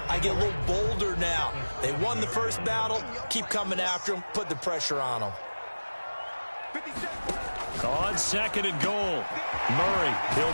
I get a little bolder now. They won the first battle. Keep coming after them. Put the pressure on them. On second and goal. Murray,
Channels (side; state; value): both; inverted; correlation -1.00